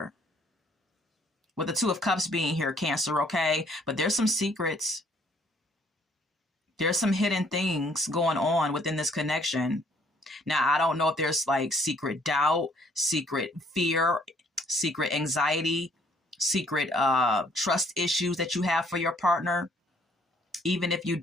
With the Two of Cups being here, Cancer, okay? But there's some secrets. There's some hidden things going on within this connection. Now, I don't know if there's like secret doubt, secret fear, secret anxiety, secret trust issues that you have for your partner. Even if you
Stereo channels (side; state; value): both; normal; correlation 0.63